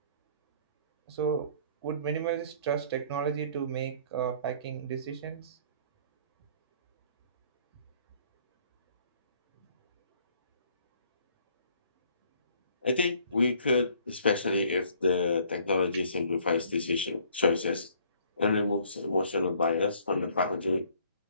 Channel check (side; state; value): both; inverted; correlation -0.59